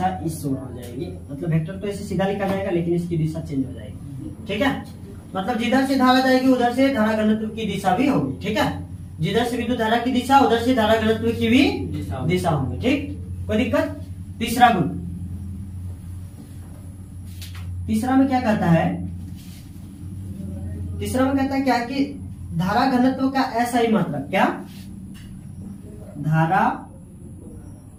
इस ओर हो जाएगी। मतलब वेक्टर तो ऐसे सीधा लिखा जाएगा, लेकिन इसकी दिशा चेंज हो जाएगी। ठीक है, मतलब जिधर से धारा जाएगी उधर से धारा घनत्व की दिशा भी होगी। ठीक है, जिधर से विद्युत धारा की दिशा, उधर से धारा घनत्व की भी दिशा होगी। ठीक, कोई दिक्कत? तीसरा गुण, तीसरा में क्या कहता है? तीसरा में कहता है क्या कि धारा घनत्व का SI मात्रक, क्या? धारा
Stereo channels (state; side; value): identical; both; correlation 1.00